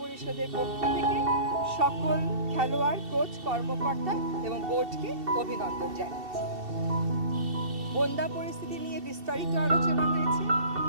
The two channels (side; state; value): left; late; 2.7 ms